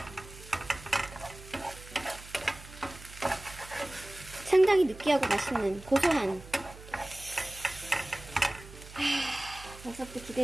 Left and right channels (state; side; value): noise; right; hum, 17 dB below the sound